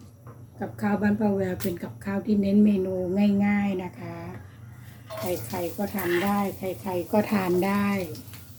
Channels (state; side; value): identical; both; correlation 1.00